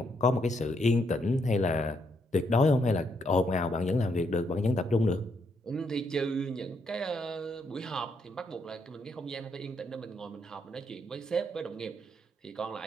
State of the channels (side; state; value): both; normal; correlation 0.76